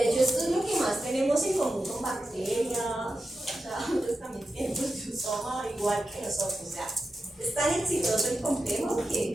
hecho esto es lo que más tenemos en común con bacterias, o sea, ellos también tienen proteosoma igual que nosotros. O sea, es tan exitoso el complejo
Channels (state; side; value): normal; both; correlation 0.90